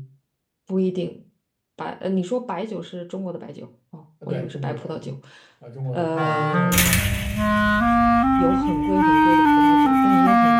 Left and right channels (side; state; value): both; identical; correlation 1.00